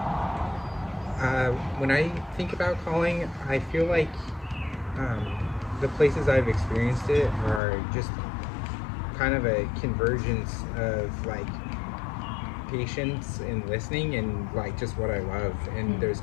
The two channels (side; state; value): right; drops out; at 7.6 s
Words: When I think about calling, I feel like the places I've experienced it are just kind of a convergence of like patience and listening and like just what I love, and there's